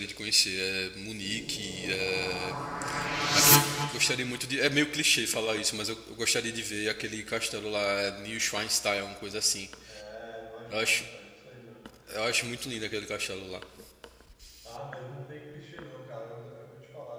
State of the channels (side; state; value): both; identical; correlation 1.00